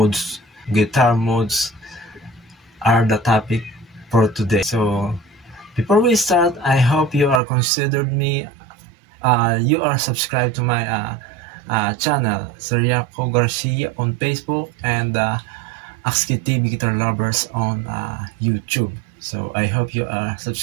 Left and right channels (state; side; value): drops out; left; at 7.4 s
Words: Guitar modes are the topic for today. So before we start, I hope you are considered me. You are subscribed to my channel, Seriaco Garcia on Facebook, and Akski TV Guitar Lovers on YouTube. So I hope you are